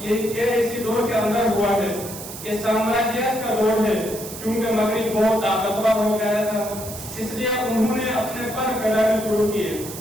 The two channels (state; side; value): noise; right; hiss, 11 dB below the sound